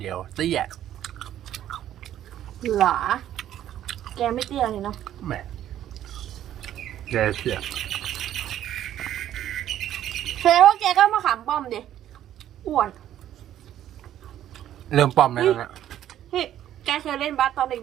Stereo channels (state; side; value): quieter; left; 11.6 dB